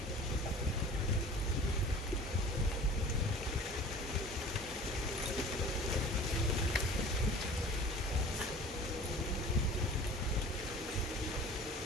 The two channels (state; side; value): normal; both; correlation 0.43